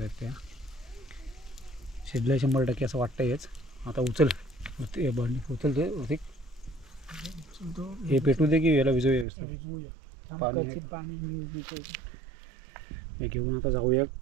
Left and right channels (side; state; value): left; drops out; at 9.2 s